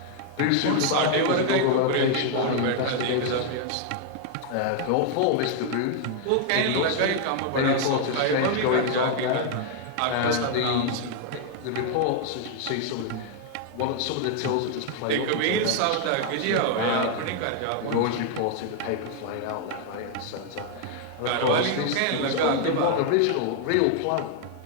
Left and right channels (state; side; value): different; both; correlation 0.00